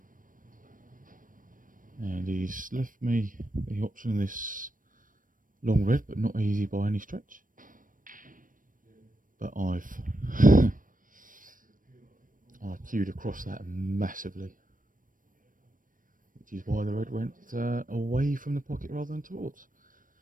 and he's left me the option of this long red, but not easy by any stretch. But I've queued across that massively, which is why the red went away from the pocket rather than towards.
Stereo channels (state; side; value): late; left; 0.39 ms